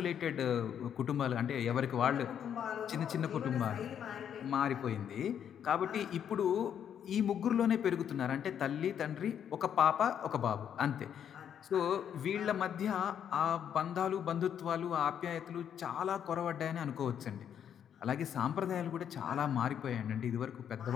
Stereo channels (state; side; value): quieter; right; 8.9 dB